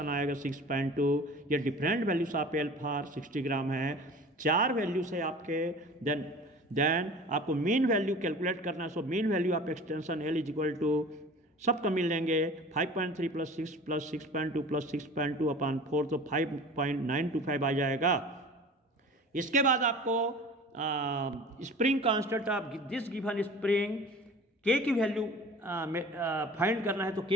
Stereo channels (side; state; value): both; normal; correlation 0.41